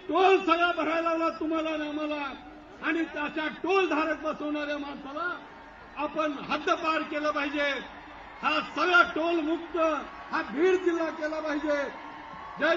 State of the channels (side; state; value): both; identical; correlation 1.00